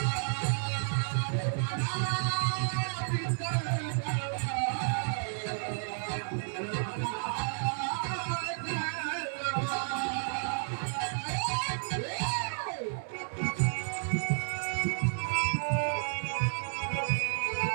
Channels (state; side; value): silent; left; 57 dB below the other